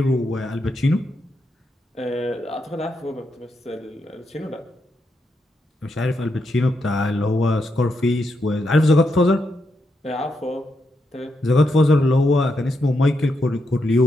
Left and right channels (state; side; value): normal; both; correlation 0.83